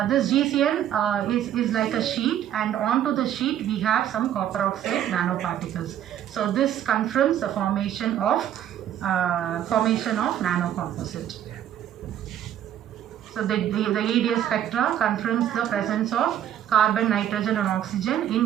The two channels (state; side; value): quieter; left; 10.8 dB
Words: this GCN is like a sheet, and onto the sheet we have some copper oxide nanoparticles. So this confirms the formation of nanocomposite. So the EDS spectra confirms the presence of carbon, nitrogen, and oxygen in